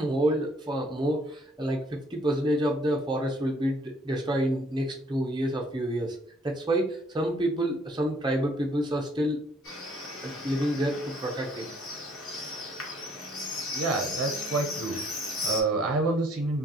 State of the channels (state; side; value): normal; both; correlation 0.62